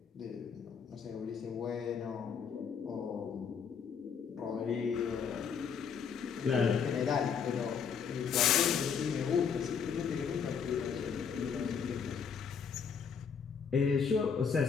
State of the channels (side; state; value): right; quieter; 6.6 dB